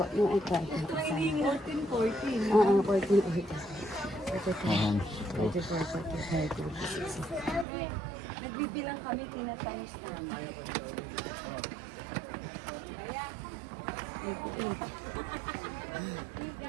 yung ika. 14. Oo, 14. Ayan. 44, 45, 46. Nagbibilang kami, tinatayos namin.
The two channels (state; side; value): drops out; left; at 7.7 s